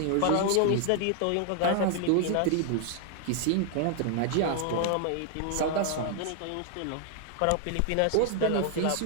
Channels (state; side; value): different; both; correlation 0.00